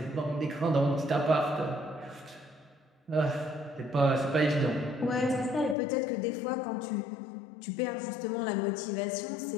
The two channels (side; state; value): right; drops out; at 5.8 s